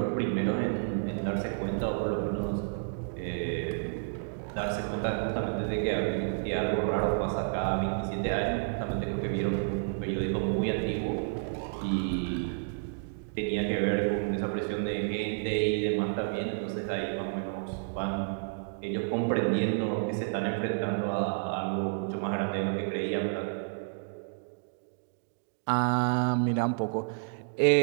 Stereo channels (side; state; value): left; silent; digital silence